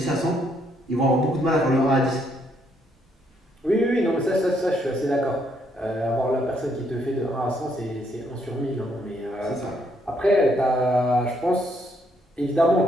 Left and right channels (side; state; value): both; normal; correlation 0.72